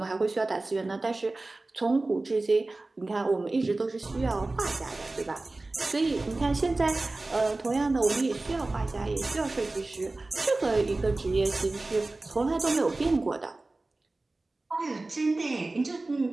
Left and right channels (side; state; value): left; quieter; 3.1 dB